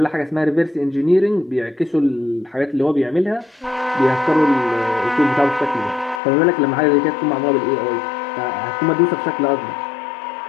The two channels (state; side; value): drops out; right; at 6.2 s